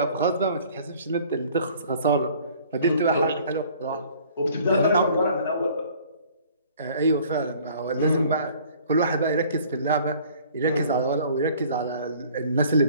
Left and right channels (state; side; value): inverted; both; correlation -0.53